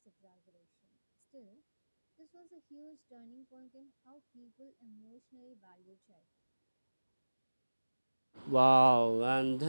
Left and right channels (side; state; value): both; inverted; correlation -1.00